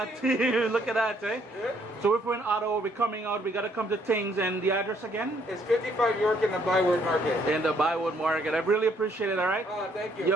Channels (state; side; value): normal; both; correlation 0.67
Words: team. Look at that, eh? Yeah. So if we're in Ottawa, we're coming out, we got to come to TINGZ, and the address again? It's 55 York in the Byward Market. In the Bywood Market. I really appreciate it, all right? Oh, thank you.